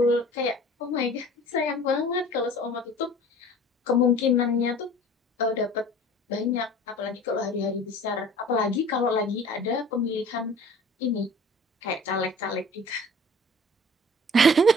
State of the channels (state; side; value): normal; both; correlation 0.46